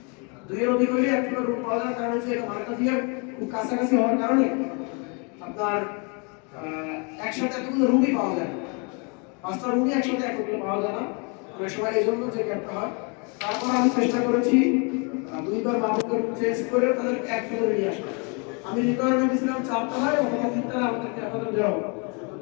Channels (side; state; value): right; quieter; 34.4 dB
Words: দুইয়ের অধিক হলে এক ফ্লোরে রুম পাওয়া যায়, কারণ হচ্ছে এটা মার্কা দিয়ে খুব কাছাকাছি হওয়ার কারণে আপনার একসাথে এতগুলো রুমই পাওয়া যায় না। 5টা রুমই একসাথে একত্রে পাওয়া যায় না, অনেক সময় এই জন্য যে গ্যাপটা হয়। তারপর আমি চেষ্টা করেছি 2বার মাহবুবকে চেঞ্জ করে তাদের এক ফ্লোরে নিয়ে আসা। আমি রিকোয়ারমেন্ট দিয়েছিলাম 4 তলায় অথবা 3 তলায় আমাদেরকে আমাদের দেওয়া হবে।